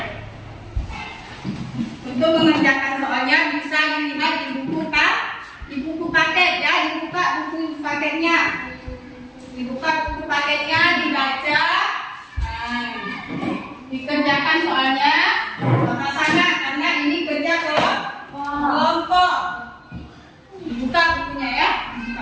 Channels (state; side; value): identical; both; correlation 1.00